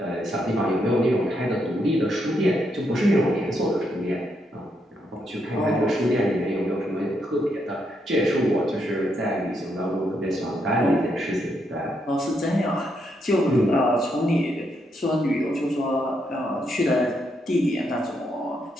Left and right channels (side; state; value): both; normal; correlation 0.78